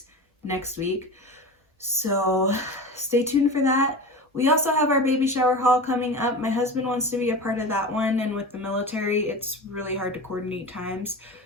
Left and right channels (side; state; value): both; normal; correlation 0.29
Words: next week. So stay tuned for that. We also have our baby shower haul coming up. My husband wants to be a part of that one, and with the military, it's really hard to coordinate times.